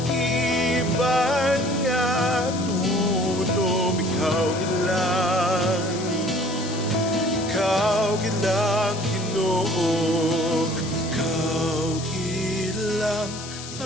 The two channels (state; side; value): noise; left; hiss, 11 dB below the sound